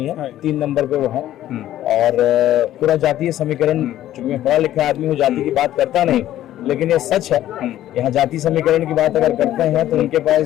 है, 3 नंबर पे वो है। और पूरा जातीय समीकरण, चूंकि मैं पढ़ा लिखा आदमी हूँ, जाति की बात करता नहीं, लेकिन ये सच है। यहाँ जाति समीकरण की बात अगर करते हैं तो उनके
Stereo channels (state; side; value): quieter; right; 13.0 dB